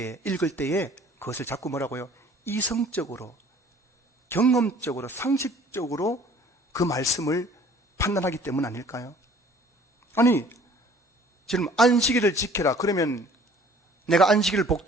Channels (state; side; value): normal; both; correlation 0.53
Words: 읽을 때에 그것을 자꾸 뭐라고요? 이성적으로, 경험적으로, 상식적으로 그 말씀을 판단하기 때문 아닐까요? 아니, 지금 안식일을 지켜라. 그러면 내가 안식일을